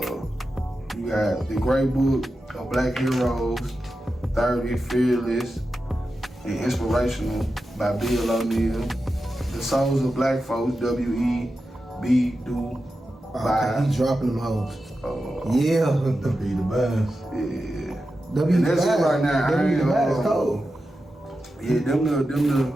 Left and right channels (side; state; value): both; normal; correlation 0.91